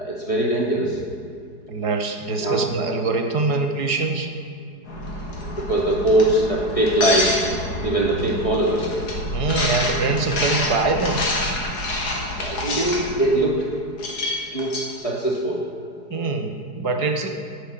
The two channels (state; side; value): late; right; 4.8 ms